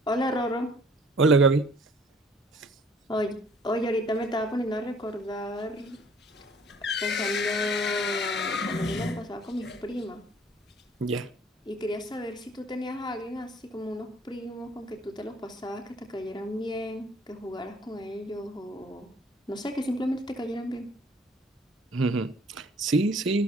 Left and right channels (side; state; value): both; normal; correlation 0.56